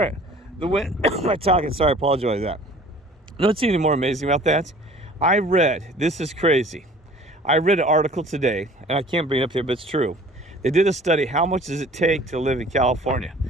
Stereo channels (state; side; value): normal; both; correlation 0.49